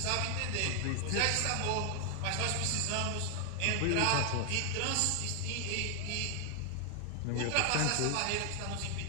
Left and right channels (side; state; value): both; different; correlation 0.00